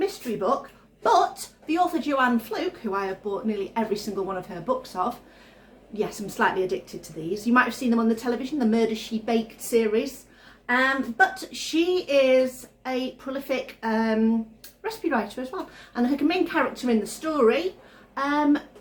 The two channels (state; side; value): identical; both; correlation 1.00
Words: book, but the author Joanne Fluke, who I have bought nearly every single one of her books of, yes, I'm slightly addicted to these. You might have seen them on the television, the Murder She Baked series. But she is a prolific recipe writer as well. And her main character in the story